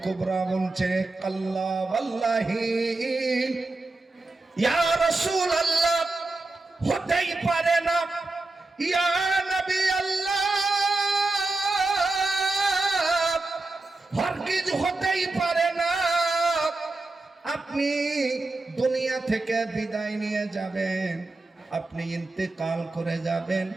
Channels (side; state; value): left; quieter; 3.2 dB